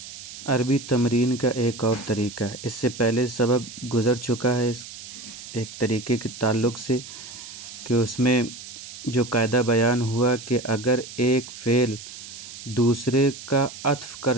عربی تمرین کا ایک اور طریقہ، اس سے پہلے سبق گزر چکا ہے اس ایک طریقے کے تعلق سے کہ اس میں جو قاعدہ بیان ہوا کہ اگر ایک فعل دوسرے کا عطف کر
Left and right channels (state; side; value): noise; right; hiss, 13 dB below the sound